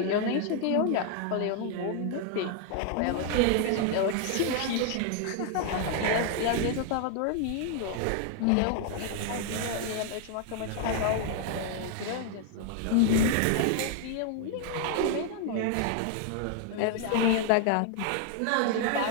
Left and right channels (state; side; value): different; both; correlation 0.00